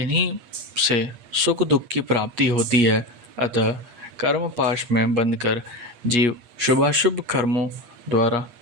से सुख दुख की प्राप्ति होती है। अतः कर्म पाश में बंधकर जीव शुभाशुभ कर्मों द्वारा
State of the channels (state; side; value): late; left; 8.4 ms